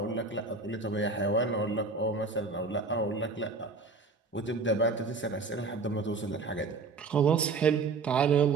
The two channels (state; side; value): quieter; left; 4.1 dB